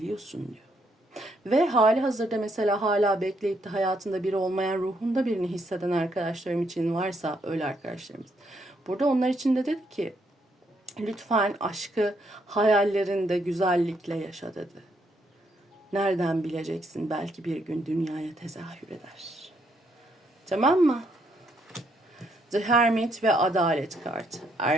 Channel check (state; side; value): normal; both; correlation 0.74